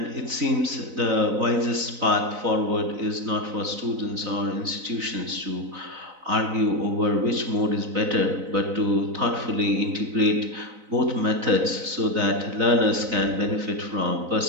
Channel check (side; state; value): left; late; 4.0 ms